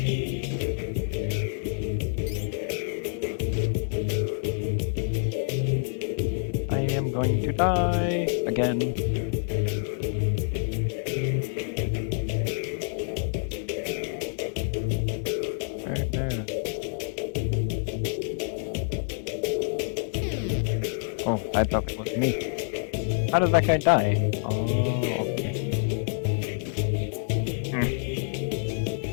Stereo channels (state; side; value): silent; right; digital silence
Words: I am going to die again. Right there. Oh, I thought it was me. How did that guy die? Oh, okay.